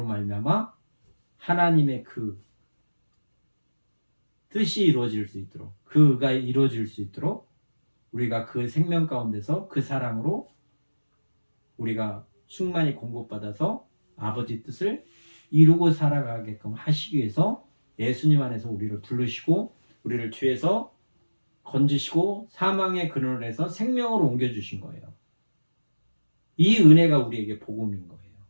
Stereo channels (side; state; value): both; inverted; correlation -1.00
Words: 말미암아 하나님의 그 뜻이 이루어질 수 있도록 그가 이루어질 수 있도록 우리가 그 생명 가운데서 그 사랑으로 우리가 충만히 공급받아서 아버지 뜻을 이루고 살아가게끔 하시기 위해서 예수님 안에서 우리를 부르시고 우리를 죄에서 건지시고 사망의 근원에서 생명으로 옮겨주신 거예요. 이 은혜가 우리에게 복음인 거예요.